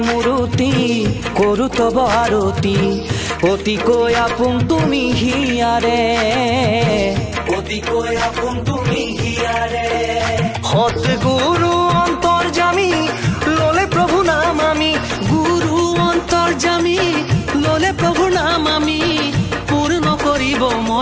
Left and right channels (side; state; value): both; identical; correlation 1.00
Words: মূৰতি কৰো তব আৰতি অতিকৈ আপোন তুমি হিয়াৰে অতিকৈ আপোন তুমি হিয়াৰে সৎগুৰু অন্তৰ্যামী ললে প্ৰভু নাম আমি গুৰু অন্তৰ্যামী ললে প্ৰভুৰ নাম আমি পূৰ্ণ কৰিব